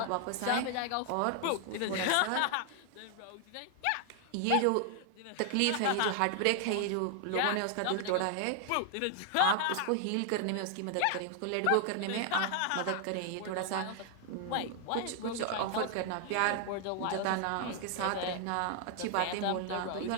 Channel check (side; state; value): both; different; correlation 0.00